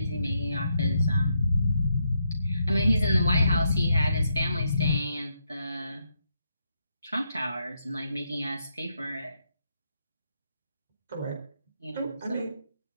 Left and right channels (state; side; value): inverted; both; correlation -0.79